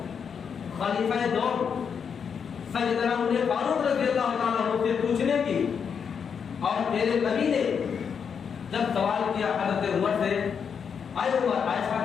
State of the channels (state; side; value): quieter; right; 6.8 dB